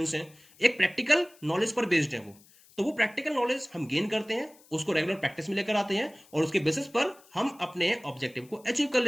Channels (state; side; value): noise; left; hiss, 27 dB below the sound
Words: हैं। एक प्रैक्टिकल नॉलेज पर बेस्ड है वो। तो वो प्रैक्टिकल नॉलेज हम गेन करते हैं, उसको रेगुलर प्रैक्टिस में लेकर आते हैं, और उसके बेसिस पर हम अपने ऑब्जेक्टिव को अचीव कर